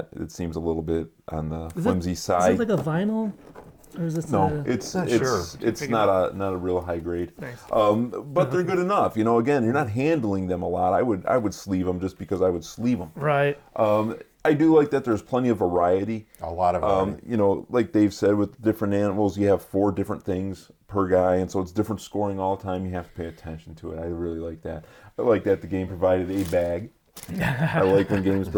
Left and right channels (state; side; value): identical; both; correlation 1.00